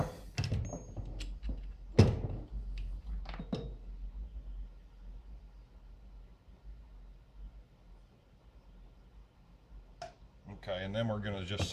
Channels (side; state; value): both; identical; correlation 1.00